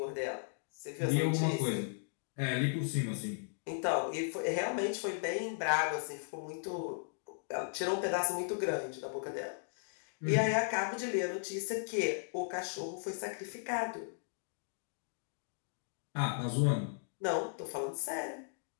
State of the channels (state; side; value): silent; right; digital silence